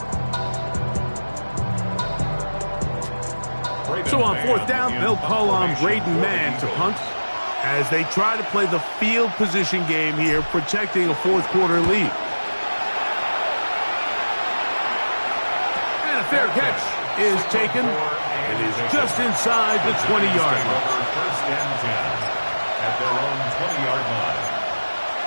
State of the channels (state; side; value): inverted; both; correlation -1.00